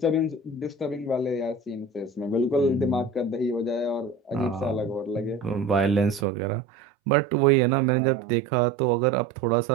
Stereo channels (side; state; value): left; drops out; at 6.2 s